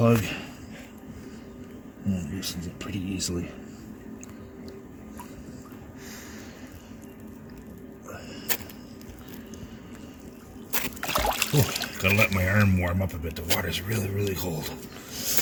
and loosens it pretty easily. Oh, gotta let my arm warm up a bit. The water's really, really cold.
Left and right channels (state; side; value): identical; both; correlation 1.00